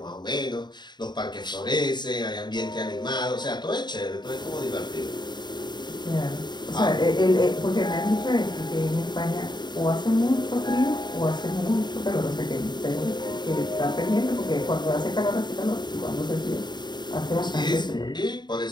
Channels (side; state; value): right; late; 0.21 ms